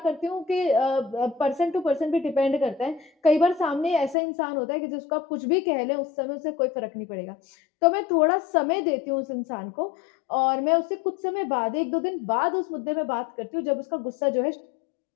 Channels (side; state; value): right; drops out; at 4.2 s